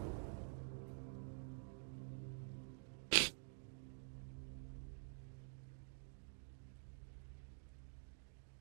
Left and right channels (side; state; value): left; silent; digital silence